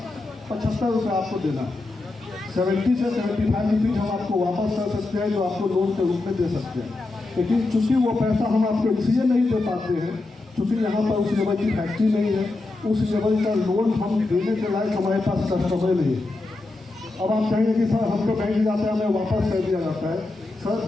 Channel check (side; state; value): right; quieter; 3.2 dB